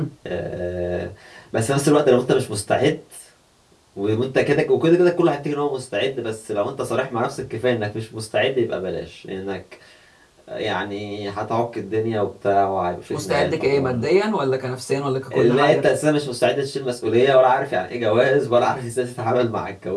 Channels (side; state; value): both; identical; correlation 1.00